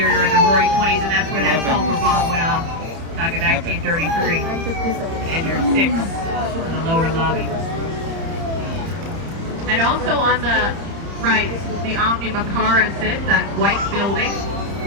in the Roaring 20s, and that's where that sulfur bomb went off back in 1933. And you're 6 in the lower lobby. And also on the right, the Omni Macara sits, that white building.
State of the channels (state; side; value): late; left; 30 ms